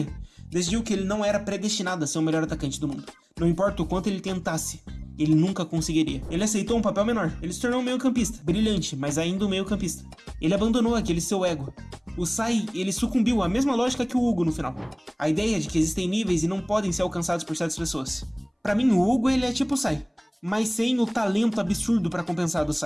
decidiu que ele não era predestinado a ser o melhor atacante do mundo. Não importa o quanto ele tentasse, ele nunca conseguiria. Ele aceitou um papel menor. Ele se tornou um meio-campista. Brilhante, mas ainda um meio-campista. Ele abandonou aquele seu ego. O Sai, ele sucumbiu à mesma lógica que o Hugo no final. A ideia de que existem níveis e não podem ser alcançados por certas pessoas. Pra mim, o Hugo, ele é tipo o Sai, mas sem o talento absurdo pra compensar do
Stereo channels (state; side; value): identical; both; correlation 1.00